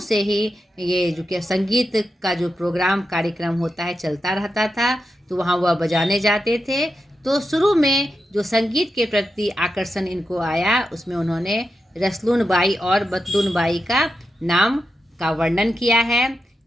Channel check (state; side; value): normal; both; correlation 0.88